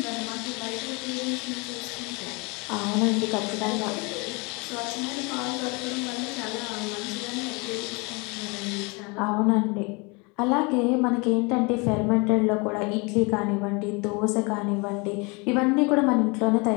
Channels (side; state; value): right; quieter; 29.1 dB